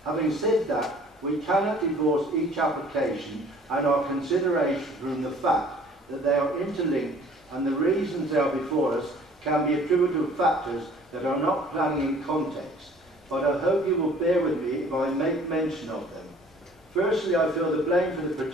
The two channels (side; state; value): both; normal; correlation 0.53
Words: Having said that, we cannot divorce each application and our consideration from the fact that they are interlinked, and the reasons they are before us can be attributable to factors that are not planning in context, but I hope you will bear with me if I make mention of them. Firstly, I feel the blame for the